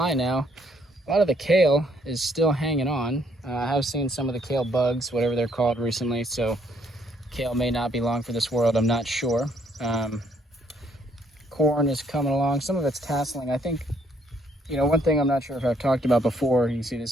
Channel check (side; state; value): both; normal; correlation 0.68